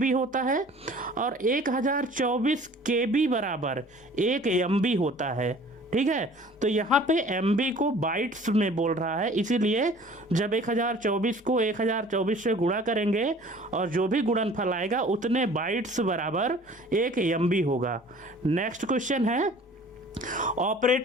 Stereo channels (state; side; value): normal; both; correlation 0.49